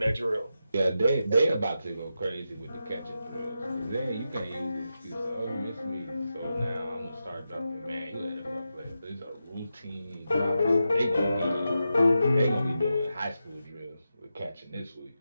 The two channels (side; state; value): both; inverted; correlation -0.89